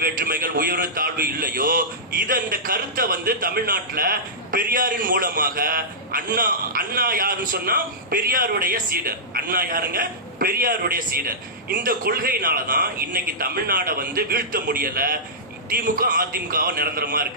வேற்றுமைகள் உயர்வு தாழ்வு இல்லையோ, இந்த கருத்தை தமிழ்நாட்டுல பெரியாரின் மூலமாக அண்ணா யாருன்னு சொன்னா பெரியாருடைய சீடர். அண்ணா யாருங்க? பெரியாருடைய சீடர். இந்த கொள்கையினாலதான் இன்னைக்கு தமிழ்நாட வீழ்த்த முடியல. திமுக அதிமுக நிரந்தரமா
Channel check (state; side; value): normal; both; correlation -0.15